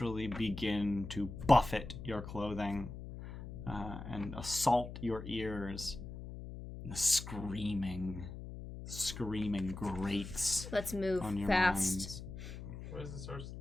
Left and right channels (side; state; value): left; noise; hum, 10 dB below the sound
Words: begin to buffet your clothing and assault your ears. And the screaming grates Let's move on your fast. minds. Where's the source of